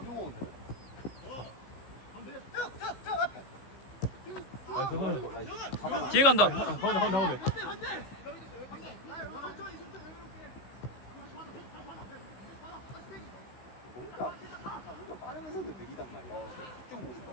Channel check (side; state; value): right; late; 15 ms